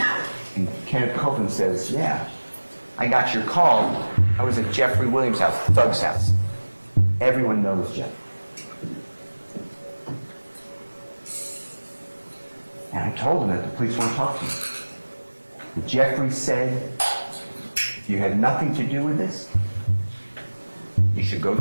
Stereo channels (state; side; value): inverted; both; correlation -1.00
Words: And Kenneth Copeland says, yeah, I got your call. I was at Jeffrey Williams' house, Thug's house. Everyone knows Jeff. And I told him that the police won't talk to you. But Jeffrey said, if you had nothing to do with this, you should go